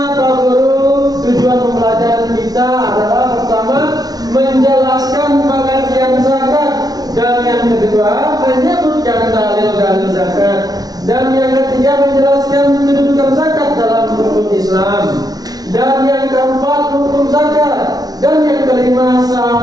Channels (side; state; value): left; late; 0.19 ms